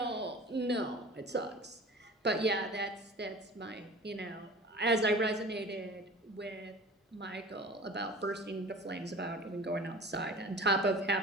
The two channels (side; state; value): both; normal; correlation 0.40